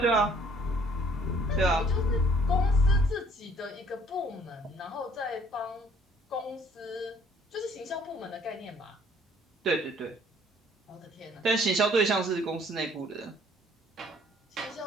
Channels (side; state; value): both; normal; correlation 0.59